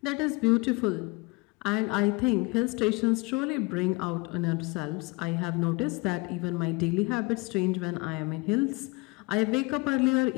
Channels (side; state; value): right; quieter; 26.5 dB